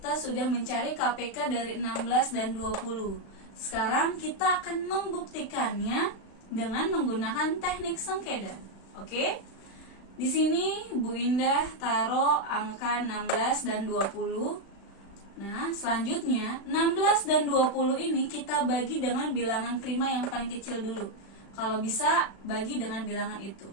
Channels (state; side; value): late; right; 36 ms